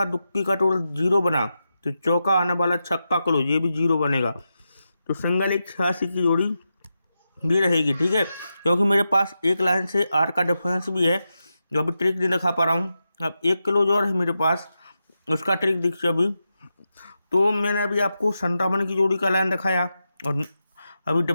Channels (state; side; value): inverted; both; correlation -0.89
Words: दुक्की का टोटल 0 बना, तो चौका आने वाला छक्का क्लोज ये भी 0 बनेगा, तो सिंगल एक 86 की जोड़ी भी रहेगी, ठीक है। क्योंकि मेरे पास एक लाइन से 8 का डिफरेंस भी है, जो अभी ट्रिक नहीं दिखा पा रहा हूँ। अब एक क्लोज और है मेरे पास, उसका ट्रिक देखिए अभी। तो मैंने अभी आपको 57 की जोड़ी का लाइन दिखाया, और अभी